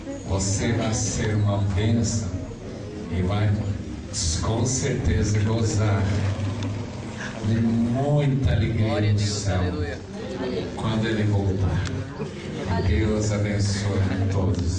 Você vai ser uma bênção e vai com certeza gozar de muita alegria no céu quando Ele voltar. Deus abençoe a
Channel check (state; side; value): identical; both; correlation 1.00